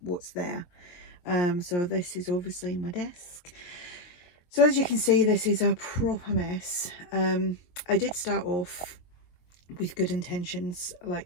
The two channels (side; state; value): right; late; 23 ms